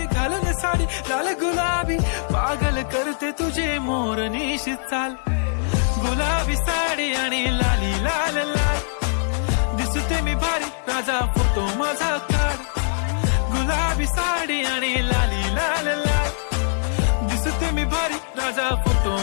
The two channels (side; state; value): right; silent; 59 dB below the other